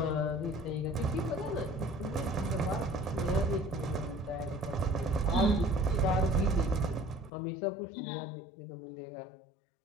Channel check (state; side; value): drops out; right; at 7.3 s